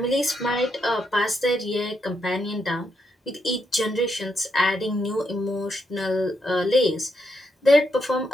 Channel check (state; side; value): normal; both; correlation 0.80